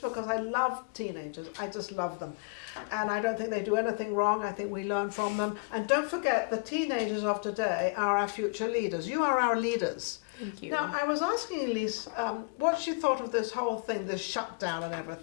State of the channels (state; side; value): quieter; right; 32.5 dB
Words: I love teenagers. I just love them. And I don't think they do anything wrong. I think we learn from them. And don't forget, the teenagers of today are our future leaders. You are our leaders. Thank you. Now, I was asking Ellyse what she thought of this whole thing, this shutdown and